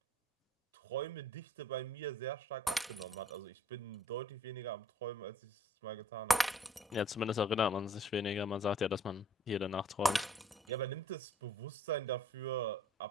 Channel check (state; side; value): normal; both; correlation 0.59